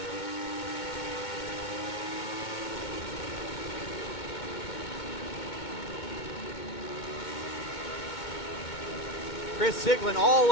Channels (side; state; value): right; late; 2.2 ms